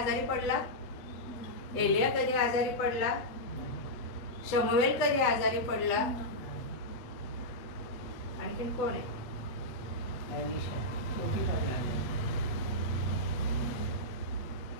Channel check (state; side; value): late; right; 8.1 ms